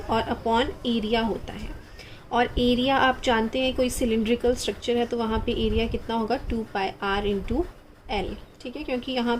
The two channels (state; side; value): identical; both; correlation 1.00